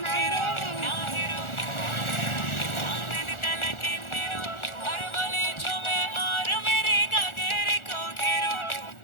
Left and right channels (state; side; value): late; right; 1.4 ms